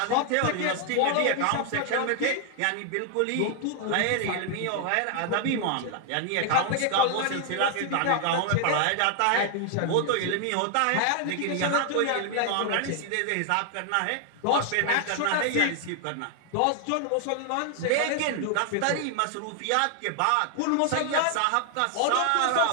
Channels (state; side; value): different; both; correlation 0.00